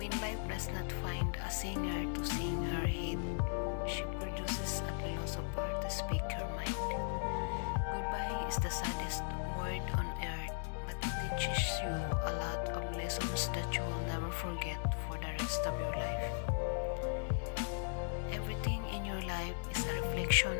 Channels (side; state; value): right; silent; digital silence